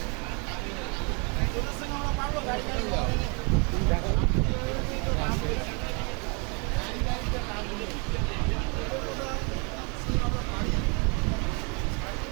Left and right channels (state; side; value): quieter; left; 33.2 dB